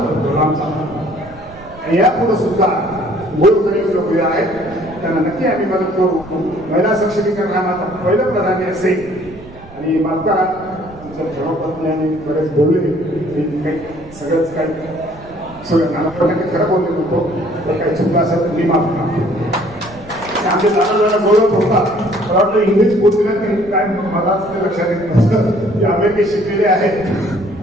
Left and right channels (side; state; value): right; noise; rumble, 20 dB below the sound